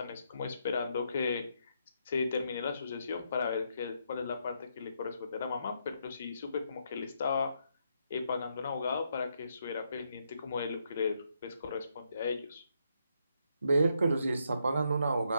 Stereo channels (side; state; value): both; inverted; correlation -0.77